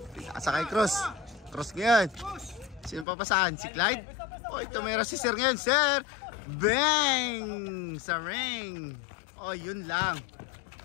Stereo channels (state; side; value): drops out; right; at 3.1 s